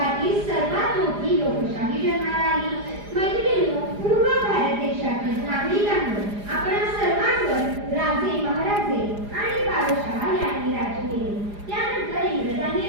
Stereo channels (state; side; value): late; left; 4.9 ms